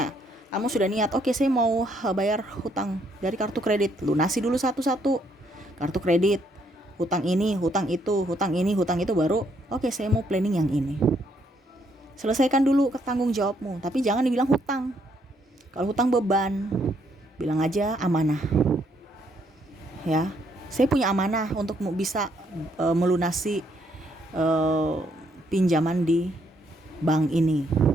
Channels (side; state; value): both; normal; correlation 0.71